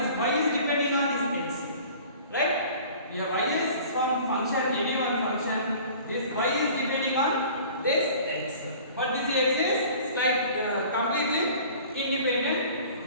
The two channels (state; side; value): inverted; both; correlation -0.46